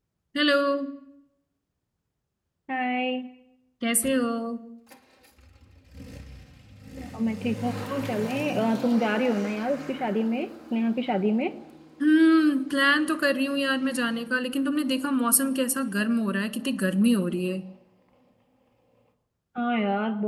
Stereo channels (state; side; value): identical; both; correlation 1.00